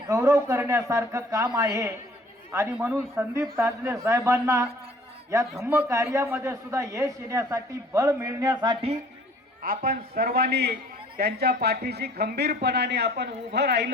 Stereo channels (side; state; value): both; normal; correlation 0.54